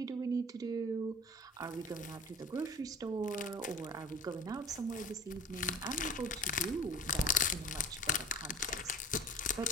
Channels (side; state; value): both; normal; correlation 0.39